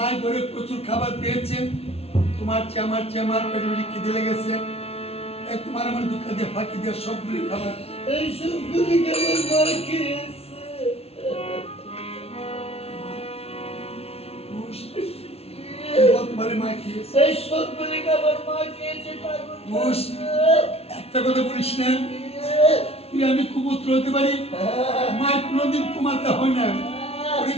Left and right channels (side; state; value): right; late; 0.30 ms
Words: ঘরে প্রচুর খাবার পেয়েছে তোমার চেয়ে আমার পেটে পেটে খিদে লেগেছে তোমার আমার দুঃখ দিয়ে ফাঁকি দিয়ে সবগুলি খাবার এই সবগুলি খাবার মার খেয়েছে একটা কথা বলিস না তুই আমি কুপুত্র হতে পারি মায়ের কোনোদিন কুমাতে হয় না